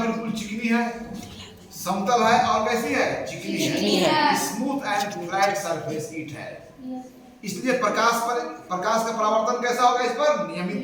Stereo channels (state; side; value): identical; both; correlation 1.00